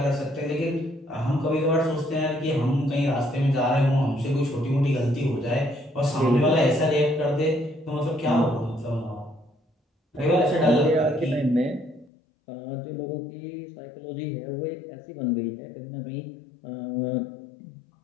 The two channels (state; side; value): drops out; right; at 12.1 s